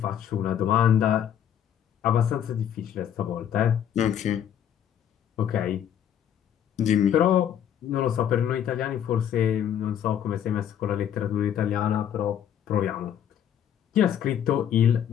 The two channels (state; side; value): quieter; right; 9.5 dB